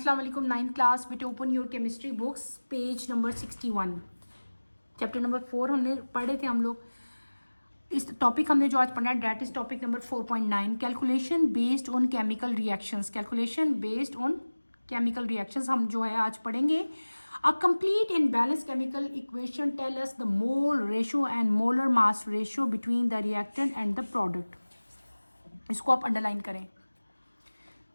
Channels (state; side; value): inverted; both; correlation -1.00